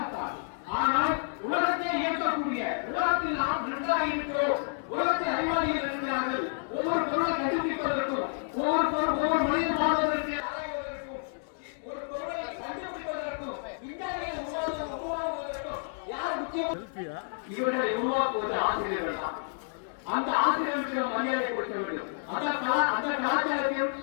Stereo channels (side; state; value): right; silent; digital silence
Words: ஆனால் உலகத்தை இயக்கக்கூடிய உலகத்தில் நாம் நன்றாக இருக்கிறோம். உலகத்தில் அறிவாளிகள் இருக்கிறார்கள். ஒவ்வொரு பொருளை கண்டுபிடிப்பதற்கும், ஒவ்வொரு மனிதன் வாழ்வதற்கு, ஒரு பொருளை கண்டுபிடிப்பதற்கும், விஞ்ஞானிகள் உருவாக்குவதற்கும் யார் முக்கியம்? இவர்களை உருவாக்குவது ஆசிரியர்கள் தான். அந்த ஆசிரியர்களுக்கு மரியாதை கொடுக்க வேண்டும். அந்த